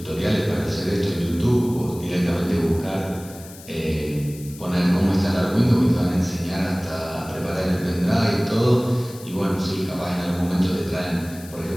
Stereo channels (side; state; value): left; noise; hiss, 18 dB below the sound